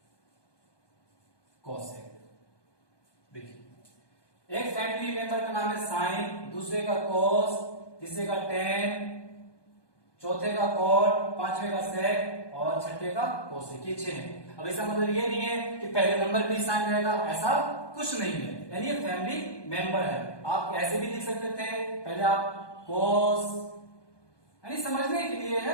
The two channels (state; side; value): late; right; 1.2 ms